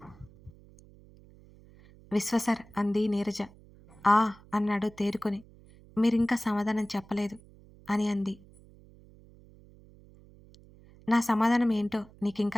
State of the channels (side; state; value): right; noise; hum, 24 dB below the sound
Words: విశ్వ సార్ అంది నీరజ. ఆ అన్నాడు తేరుకొని. మీరింకా సమాధానం చెప్పలేదు అని అంది. నా సమాధానం ఏంటో